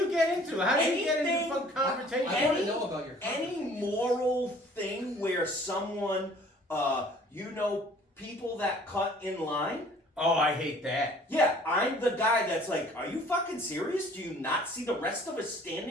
get into? How do you get into Anything- fun conversation? I want to know about your Any conversation. moral thing where someone, people that cut in line? Oh, I hate that. Yeah, I'm the guy that's like, "Are you fucking serious? Do you not see the rest of us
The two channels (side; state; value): both; normal; correlation 0.53